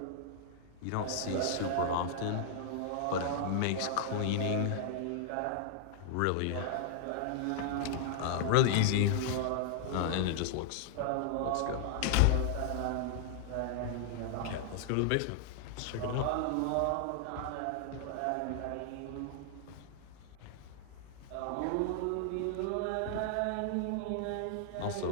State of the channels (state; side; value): different; both; correlation -0.01